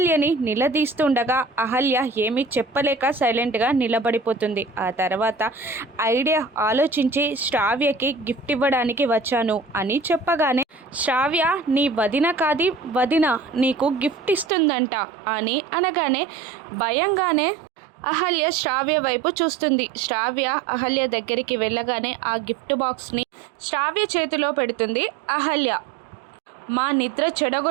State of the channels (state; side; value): drops out; left; at 14.5 s